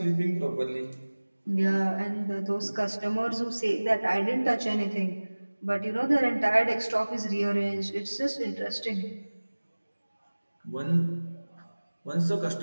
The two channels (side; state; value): both; inverted; correlation -1.00